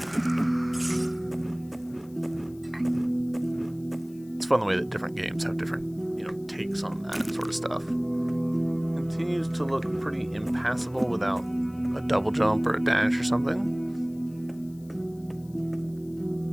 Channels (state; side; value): noise; left; hiss, 28 dB below the sound